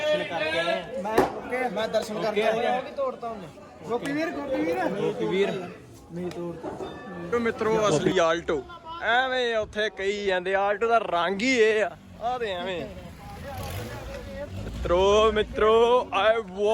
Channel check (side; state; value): both; identical; correlation 1.00